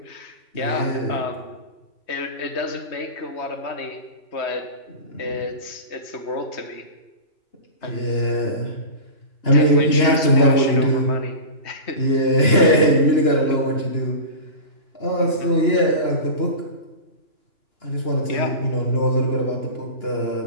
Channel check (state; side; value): late; right; 2.9 ms